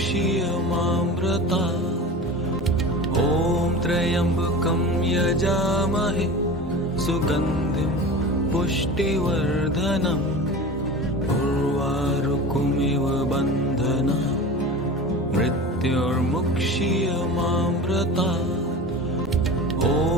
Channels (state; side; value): normal; both; correlation 0.33